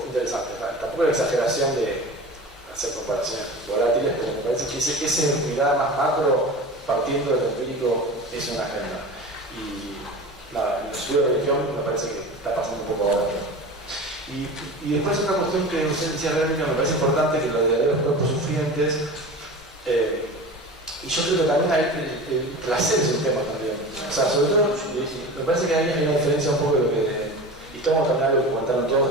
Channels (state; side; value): normal; both; correlation 0.33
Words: interesante. Tampoco la exageración de hacer comparaciones volátiles, pero me parece que esa mirada más macro, partiendo del empírico, es una agenda. Y nada, en el estudio de religión me parece que está pasando un poco ahora. Y después otra cuestión que usted decía, Verónica, me parece importante, que lo de los cuerpos sufrientes, y yo creo que también el placer es un tema también. O sea, sobre todo, me parece que hay una diferencia un poco de lo que, y tomo también algo que comentaron